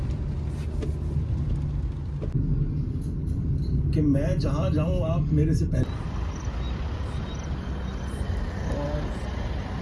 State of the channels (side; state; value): both; identical; correlation 1.00